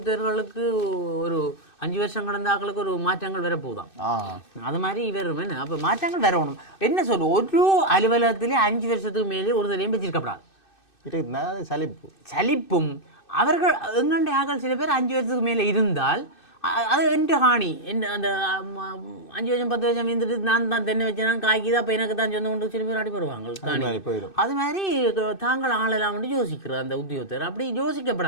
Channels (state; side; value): late; right; 2.6 ms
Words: ஒரு 5 வருஷம் கடந்த ஆக்களுக்கு ஒரு மாற்றங்கள் வரப்போதான். அது மாதிரி வரும் என்ன, அப்போ மாற்றங்கள் வரணும். என்ன சொல்லு, ஒரு அலுவலகத்திலே 5 வருஷத்துக்கு மேலே ஒரு தலையும் வச்சிருக்கப்படாது. சலிப்பும் அவர்கள் எங்கண்ட ஆக்கள் சில பேர் 5 வருஷத்துக்கு மேலே இருந்தால் அது என்ற காணி என்ன அந்த 5 வருஷம் 10 வருஷம் இருந்துட்டு நான் தான் தென்னை வச்சேன் காய்க்குது, அப்போ எனக்கு தான் சொந்த கொண்டு சில பேர் அடி போடுவாங்க காணி. அது மாதிரி தாங்கள் ஆளலாம் யோசிக்கிறது அந்த உத்தியோகத்தர், அப்படி